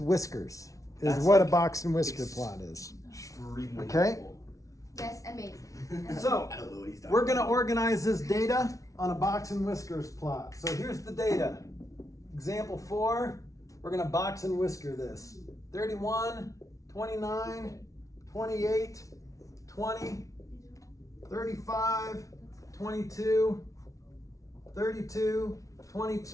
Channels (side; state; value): right; late; 0.16 ms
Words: whiskers, is That's what a like box and whisker plot is. Extremely Okay. helpful. Yes, amazing. So I don't know what he's talking we're gonna about. organize this data on a box and whiskers plot. So here's the data. Example 4, we're gonna box and whisker this. 31, 29, 28, 20, 35, 22, 32,